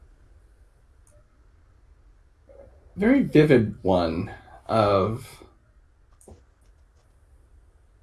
Very vivid one of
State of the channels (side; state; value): both; identical; correlation 1.00